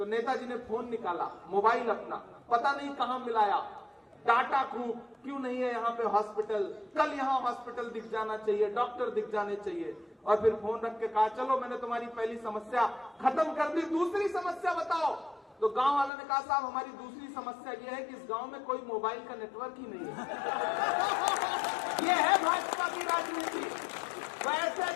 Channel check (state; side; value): drops out; right; at 16.1 s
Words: नेताजी ने फोन निकाला, मोबाइल अपना, पता नहीं कहां मिलाया, डाटा खूब, क्यों नहीं है यहाँ पे हॉस्पिटल, कल यहाँ हॉस्पिटल दिख जाना चाहिए, डॉक्टर दिख जाने चाहिए। और फिर फोन रख के कहा चलो मैंने तुम्हारी पहली समस्या खत्म कर दी, दूसरी समस्या बताओ। तो गांव वालों ने कहा साहब हमारी दूसरी समस्या यह है कि इस गांव में कोई मोबाइल का नेटवर्क ही नहीं है। ये है भाजपा की राजनीति। वो ऐसे